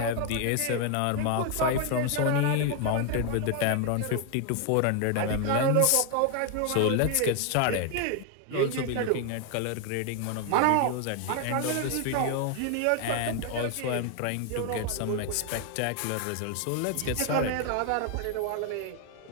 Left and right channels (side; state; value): both; different; correlation 0.00